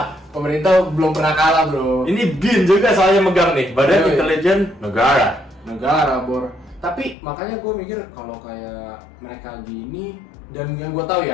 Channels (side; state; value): right; drops out; at 7.2 s